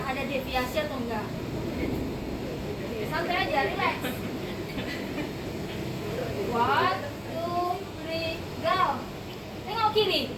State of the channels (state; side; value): identical; both; correlation 1.00